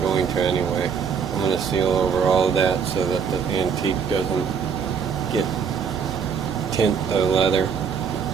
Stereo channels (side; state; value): left; quieter; 6.6 dB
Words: going to anyway. I'm going to seal over all of that so that the antique doesn't get tint leather.